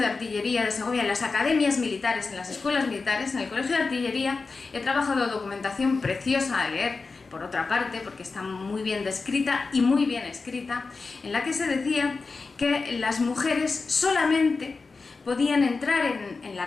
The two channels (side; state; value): right; quieter; 4.2 dB